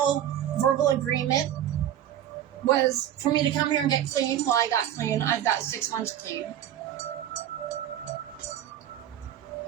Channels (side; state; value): left; quieter; 11.0 dB